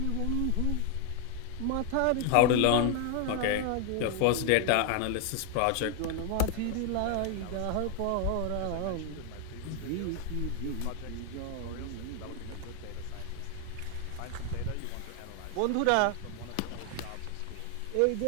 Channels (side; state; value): both; different; correlation 0.01